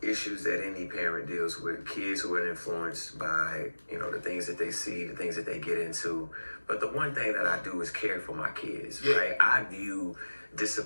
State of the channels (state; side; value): inverted; both; correlation -1.00